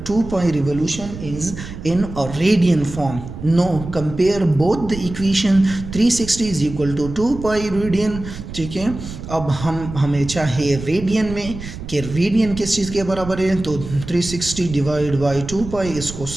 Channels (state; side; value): noise; right; rumble, 11 dB below the sound